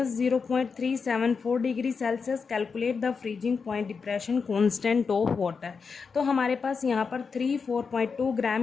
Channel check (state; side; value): quieter; right; 5.3 dB